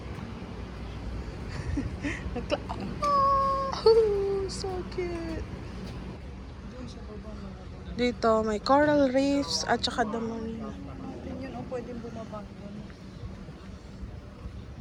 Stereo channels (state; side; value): identical; both; correlation 1.00